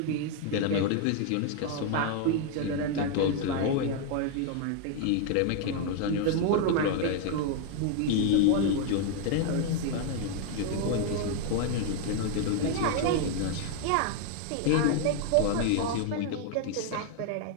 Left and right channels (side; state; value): both; different; correlation 0.00